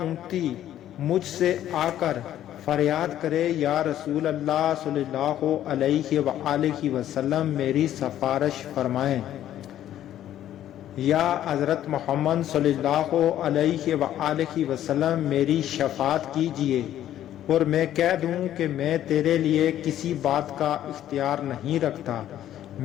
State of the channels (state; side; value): quieter; right; 11.9 dB